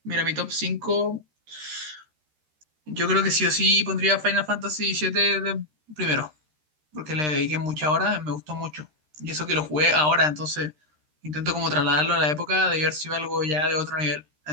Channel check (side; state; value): left; late; 13 ms